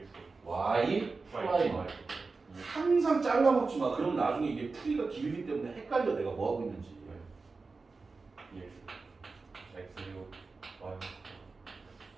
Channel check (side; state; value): left; quieter; 4.1 dB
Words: Y 프라임 항상 잘라먹지 마. 그럼 나중에 이게 풀이가 길기 때문에 헷갈려. 내가 뭐 하고 있는지. EX. X6. Y.